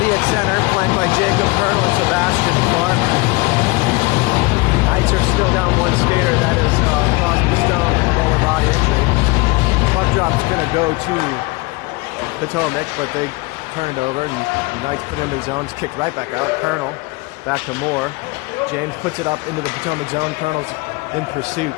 at center, flanked by Jacob Colonel and Sebastian Farmer. Knights are still down one skater. That is Crosby Stone with a lower body injury. Puck drop's going to go to Potomac, but they turn it over, and the Knights put it in the zones, kicked right back out. Colonel back to Moore. James puts it up into the Potomac zone. Colonel's in pursuit.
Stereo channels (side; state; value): right; quieter; 25.0 dB